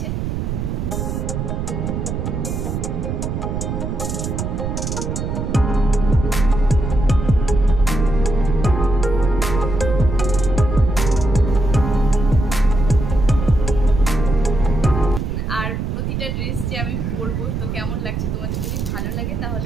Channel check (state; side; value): noise; right; rumble, 3 dB below the sound